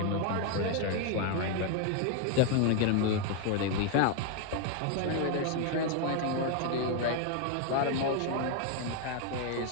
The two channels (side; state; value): both; different; correlation 0.01